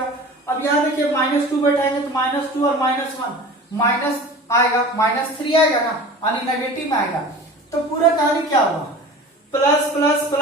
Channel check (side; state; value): both; normal; correlation 0.39